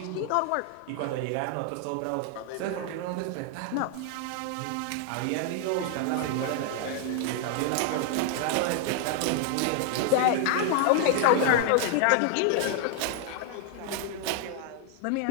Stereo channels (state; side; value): different; both; correlation 0.00